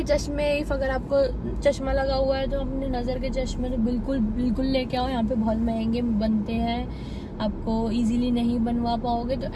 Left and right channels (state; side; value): identical; both; correlation 1.00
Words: चश्मे, इफ अगर आपको चश्मा लगा हुआ है तो अपने नज़र के चश्मे तो बिल्कुल लेके आओ। यहाँ पे बहुत महंगे बनते हैं, आपको इजीली नहीं बनवा पाओगे, तो